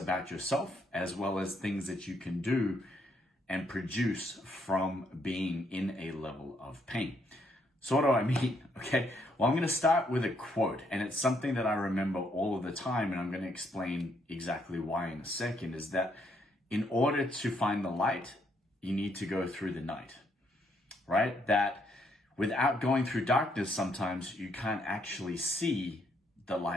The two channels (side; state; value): both; normal; correlation 0.73